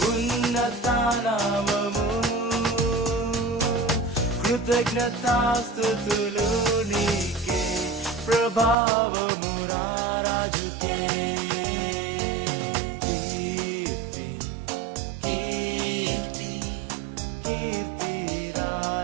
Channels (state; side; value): drops out; left; at 8.8 s